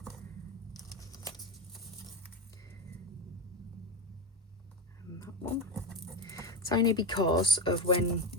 And that one. It's only because of when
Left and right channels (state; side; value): normal; both; correlation 0.14